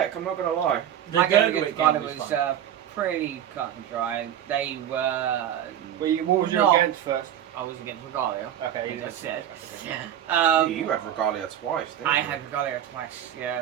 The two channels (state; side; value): quieter; left; 10.6 dB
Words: I'm not gonna lie. The my game Gurgrit against Ghana game was was fun. pretty cut and dry. They were. What was you No. against first? I was against Regalia. Okay, As I said. You had Regalia twice, didn't I you? had Regalia twice,